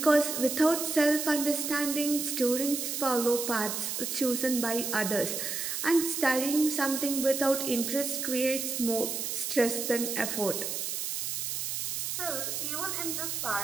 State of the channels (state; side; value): noise; right; hiss, 3 dB below the sound